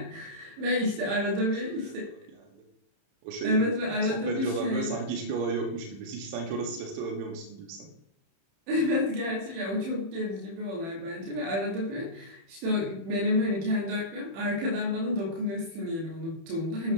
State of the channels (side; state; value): left; late; 30 ms